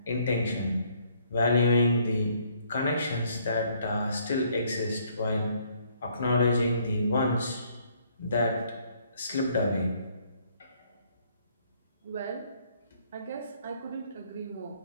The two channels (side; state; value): both; inverted; correlation -0.66